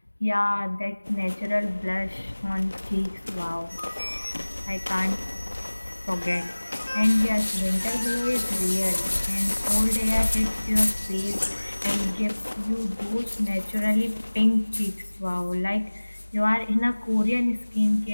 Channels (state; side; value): inverted; both; correlation -1.00